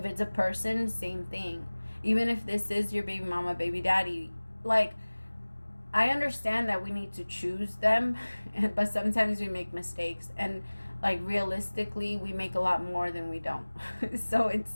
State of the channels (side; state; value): both; inverted; correlation -1.00